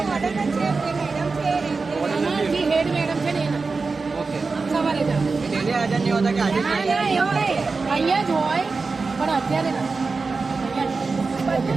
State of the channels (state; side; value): quieter; left; 4.2 dB